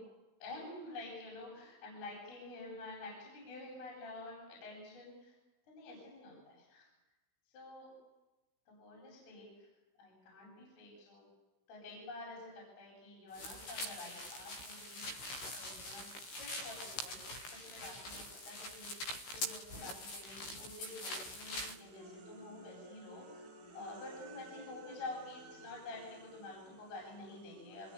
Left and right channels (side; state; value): right; late; 16 ms